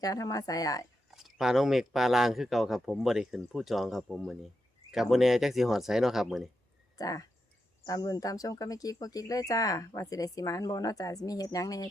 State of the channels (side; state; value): both; normal; correlation 0.86